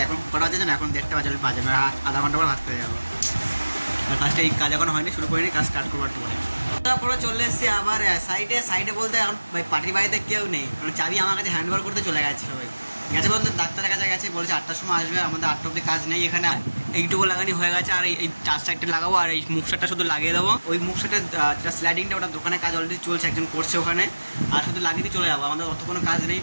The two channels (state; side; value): inverted; both; correlation -1.00